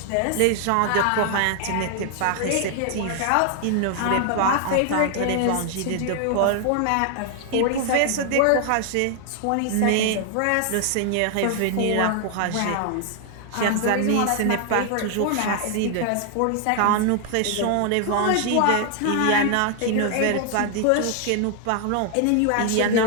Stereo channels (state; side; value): different; both; correlation 0.00